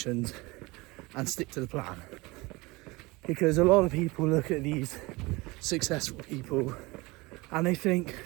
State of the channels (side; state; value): left; quieter; 23.5 dB